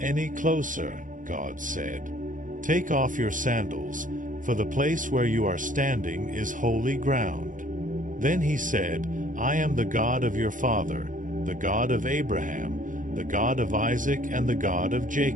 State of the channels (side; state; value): left; late; 0.38 ms